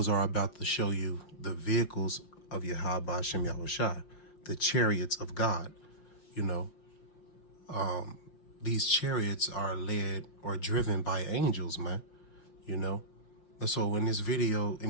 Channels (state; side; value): late; right; 5.7 ms